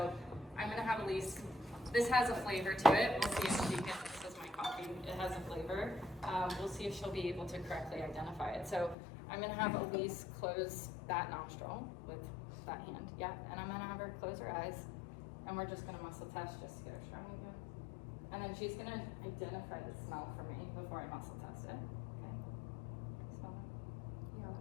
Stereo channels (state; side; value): drops out; right; at 9.0 s